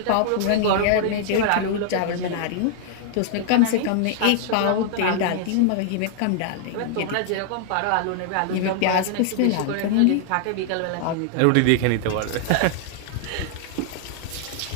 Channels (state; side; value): different; both; correlation 0.00